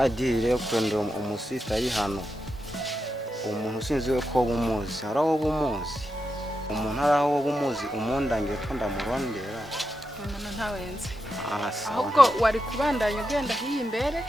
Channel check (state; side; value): normal; both; correlation 0.87